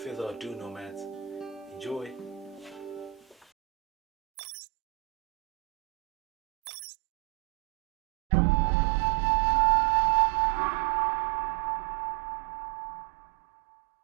ado nomads, enjoy!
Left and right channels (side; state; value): left; drops out; at 3.5 s